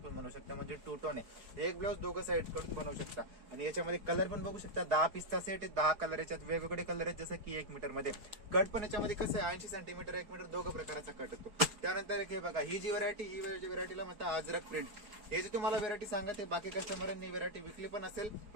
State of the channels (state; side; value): late; left; 4.8 ms